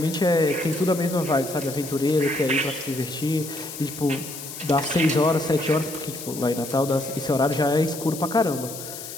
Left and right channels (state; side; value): noise; left; hiss, 11 dB below the sound